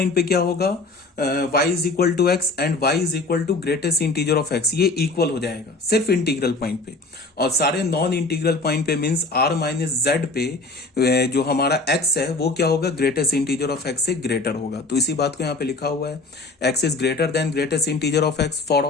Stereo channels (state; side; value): quieter; right; 3.5 dB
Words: पे क्या होगा, y is equal to X and y is equal to greatest integer of x, ये इक्वल हो जाएगा सिर्फ इंटीग्रल पॉइंट पे। और सारे नॉन इंटीग्रल पॉइंट पे मींस r माइनस जेड पे जो हमारा x है वो क्या होगा, ग्रेटेस्ट इंटीजर ऑफ x से ग्रेटर होगा। तो इसी बात को यहाँ पे लिखा हुआ है, x is greater than greatest integer of x for